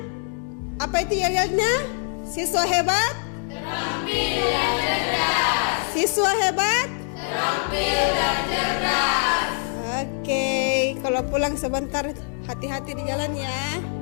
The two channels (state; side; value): silent; right; 56 dB below the other